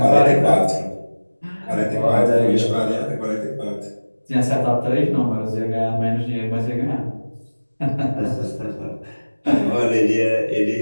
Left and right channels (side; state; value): both; inverted; correlation -1.00